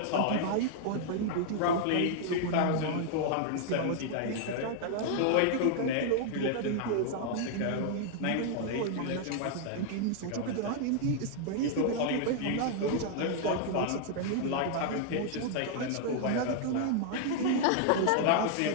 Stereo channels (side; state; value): both; different; correlation 0.00